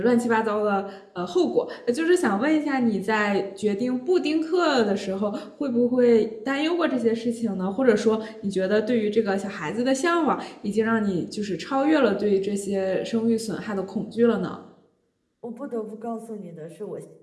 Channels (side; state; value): both; identical; correlation 1.00